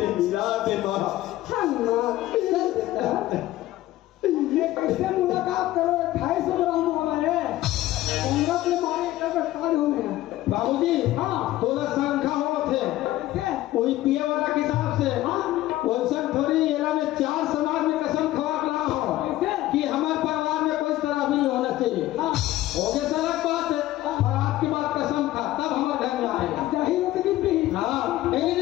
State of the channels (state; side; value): quieter; right; 15.5 dB